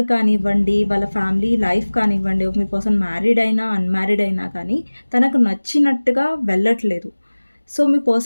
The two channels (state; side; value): inverted; both; correlation -1.00